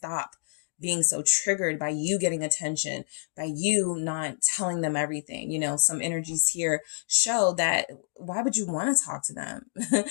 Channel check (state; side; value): silent; right; digital silence